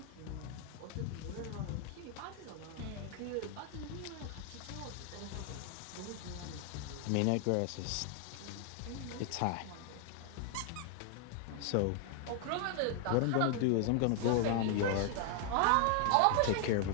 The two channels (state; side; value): different; both; correlation 0.00